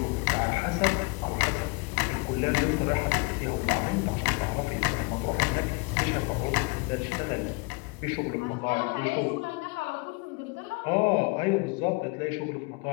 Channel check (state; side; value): quieter; right; 28.7 dB